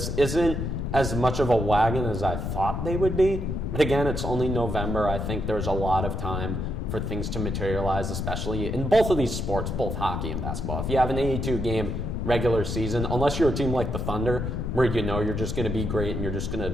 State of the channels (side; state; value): left; noise; rumble, 2 dB below the sound